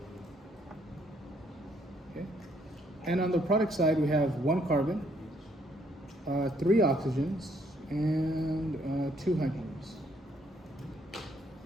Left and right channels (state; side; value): normal; both; correlation 0.69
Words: Okay. And on the product side, we have 1 carbon, 3 oxygens, and 2 hydrogens.